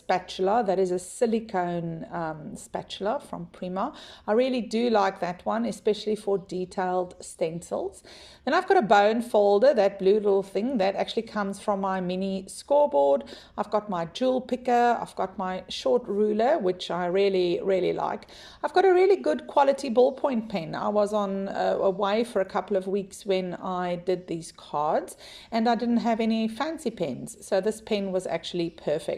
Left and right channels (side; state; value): both; identical; correlation 1.00